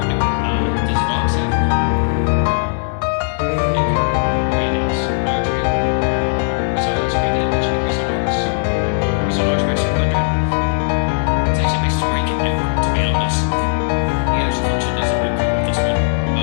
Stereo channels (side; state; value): right; silent; digital silence